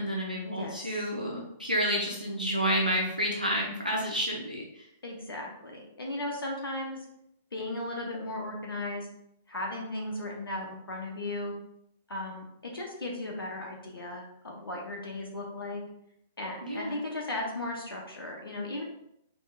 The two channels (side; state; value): both; inverted; correlation -0.39